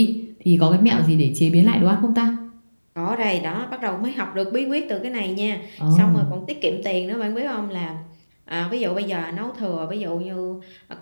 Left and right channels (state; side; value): inverted; both; correlation -1.00